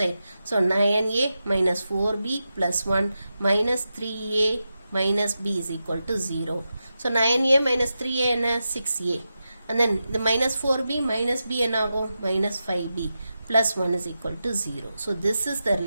so 9a minus 4b plus 1 minus 3a minus b is equal to 0. so 9a minus 3a என்ன? 6a. and then the minus 4b minus b என்ன ஆகும்? minus 5b plus 1 is equal to 0. so this is the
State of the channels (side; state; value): both; inverted; correlation -0.90